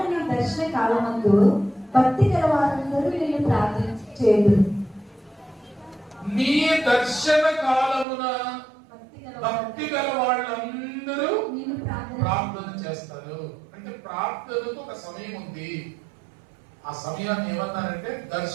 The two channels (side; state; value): left; drops out; at 8.1 s